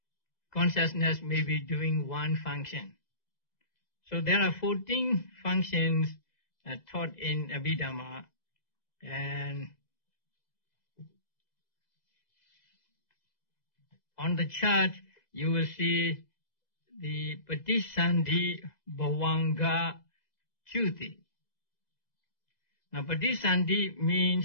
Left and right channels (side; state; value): right; late; 2.0 ms